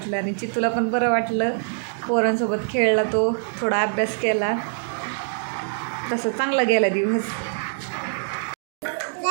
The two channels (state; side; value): silent; left; digital silence